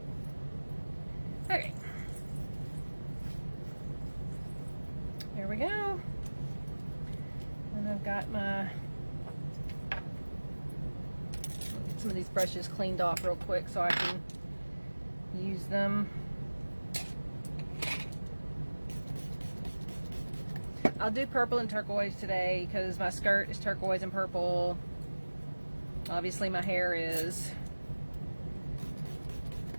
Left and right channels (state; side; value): inverted; both; correlation -1.00